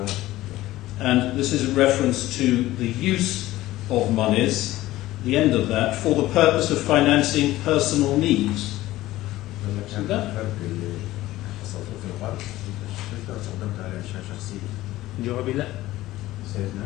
And this is a reference to the use of monies, the end of that, for the purpose of financing personal needs. See that?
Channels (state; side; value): quieter; right; 16.4 dB